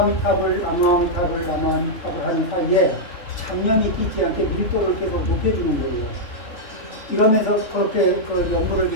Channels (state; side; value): late; right; 3.7 ms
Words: 하는 사이에 잡념이 끼지 않게 밀도를 계속 높여주는 거예요. 이러면서 그렇게 연구를